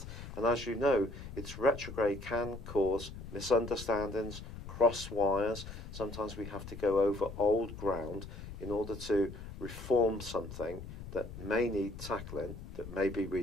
and as you know, its retrograde can cause misunderstandings, cross wires. Sometimes we have to go over old ground in order to reform something that may need tackling, that maybe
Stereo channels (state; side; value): noise; left; rumble, 11 dB below the sound